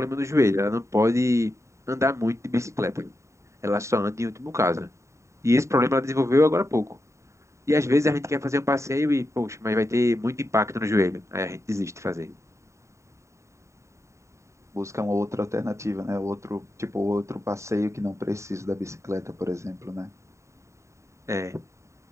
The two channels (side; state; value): left; late; 0.14 ms